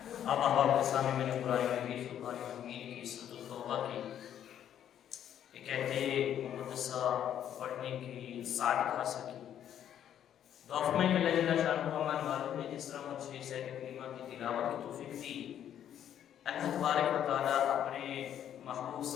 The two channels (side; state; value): right; quieter; 10.1 dB